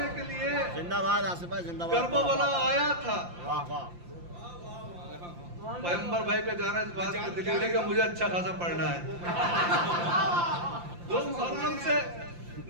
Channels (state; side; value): late; left; 5.8 ms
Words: के लिए जिंदाबाद आसिफ भाई, जिंदाबाद। करबला आया था। वाह वाह। पैगंबर भाई का जाना इस बात को दिखाने का मुझे अच्छा खासा पढ़ना है। 2 मुहर्रम से